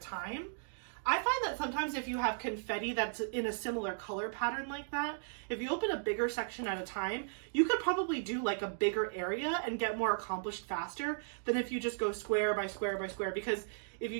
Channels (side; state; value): left; silent; digital silence